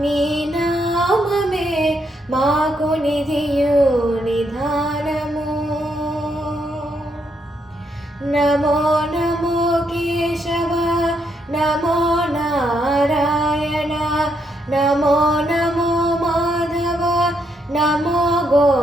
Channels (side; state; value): both; normal; correlation 0.77